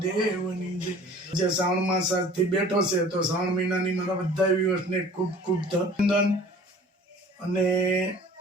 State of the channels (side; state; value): both; normal; correlation 0.47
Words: જે શ્રાવણ માસ આજથી બેઠો છે, તો શ્રાવણ મહિનાની મારા બધા વ્યુઅર્સને ખૂબ ખૂબ અભિનંદન. અને